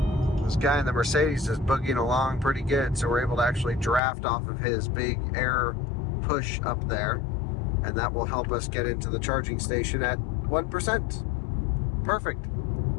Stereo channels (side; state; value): right; drops out; at 4.0 s